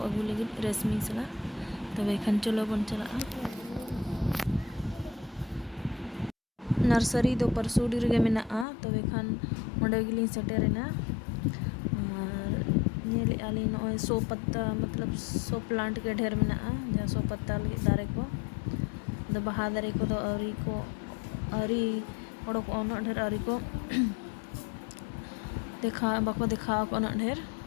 अगू लगी रेशमी चला तबे खान चलो बन चला नर्सरी दो परसुडी रे मेना तबे खान ओंडे गिलिन सेटेरेना नेले आली नॉय सो पत्ता मतलब सो प्लांट के ढेर में जहाँ सो पत्ता लगे दारे को दो बहा दारे को दो अरी ओडो को उन ढेर अरी को देखा बाको देखा को उन ढेर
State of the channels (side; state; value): right; drops out; at 8.7 s